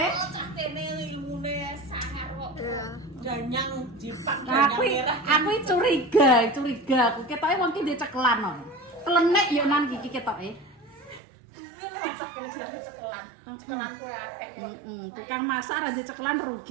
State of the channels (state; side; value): drops out; left; at 11.2 s